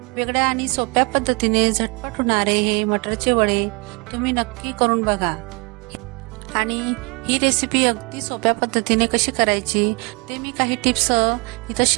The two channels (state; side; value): quieter; left; 30.2 dB